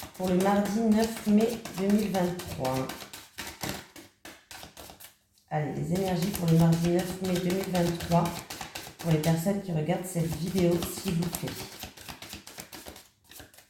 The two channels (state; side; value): identical; both; correlation 1.00